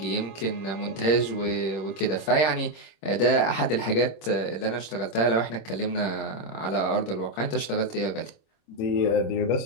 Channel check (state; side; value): late; right; 26 ms